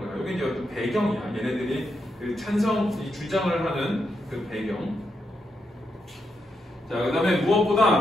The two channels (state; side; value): normal; both; correlation 0.83